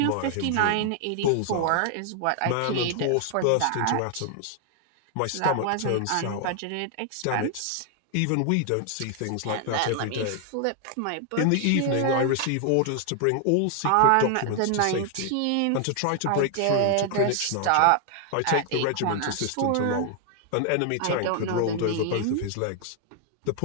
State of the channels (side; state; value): both; different; correlation 0.00